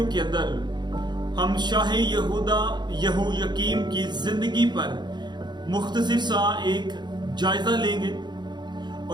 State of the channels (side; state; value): left; late; 0.21 ms